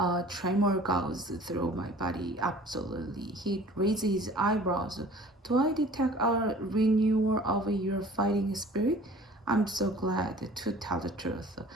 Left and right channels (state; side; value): normal; both; correlation 0.48